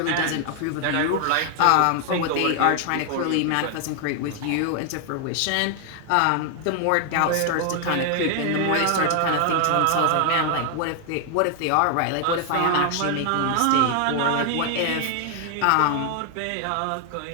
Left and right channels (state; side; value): different; both; correlation 0.00